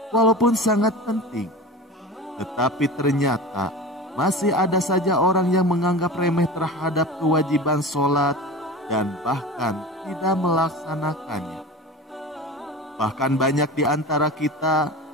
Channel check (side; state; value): both; normal; correlation 0.32